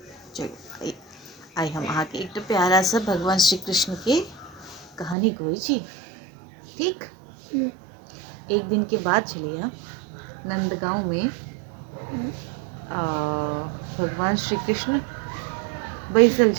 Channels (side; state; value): left; drops out; at 5.2 s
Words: चलो आइ हम अहाँ के एकटा प्यारा सा भगवान श्री कृष्ण के कहानी कहै छी, ठीक? एक दिन के बात छलैया नंदगांव में भगवान श्री कृष्ण बैसल